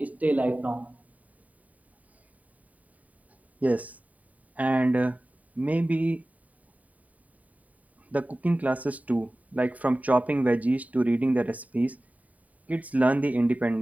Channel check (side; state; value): left; late; 0.071 ms